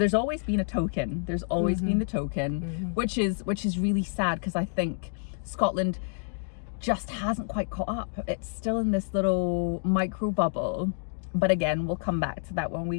always been a token. There's always been the token, which is really sad, because I think Scotland just hasn't quite caught up. It's still in this little micro bubble. But again, we'll come back to that when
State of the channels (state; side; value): silent; right; digital silence